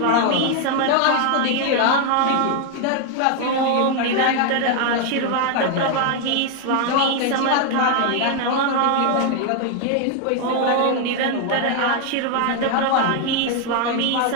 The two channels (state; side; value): different; both; correlation 0.00